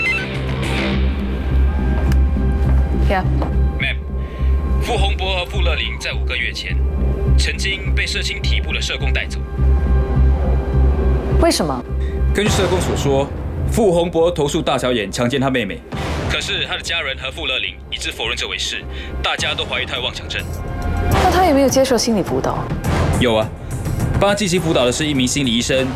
！Ma'am， 傅洪博和傅乐玲在5个月前，曾经被社青体部的社工带走。为什么？根据社工所说，傅洪博投诉大小眼强奸他妹妹，可是他的家人和傅乐玲一致否认这回事，大家都怀疑他有妄想症。那他有没有接受心理辅导？有啊，帮他进行辅导的是一名心理医生，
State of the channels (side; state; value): both; identical; correlation 1.00